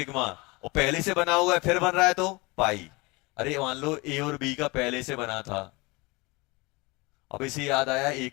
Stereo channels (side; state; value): right; quieter; 25.0 dB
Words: और पहले से बना हुआ है फिर बन रहा है तो पाई। अरे मान लो ए और बी का पहले से बना था, अब इसे याद आया ए